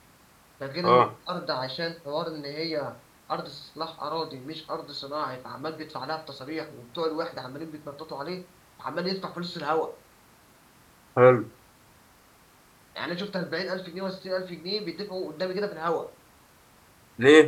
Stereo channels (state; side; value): identical; both; correlation 1.00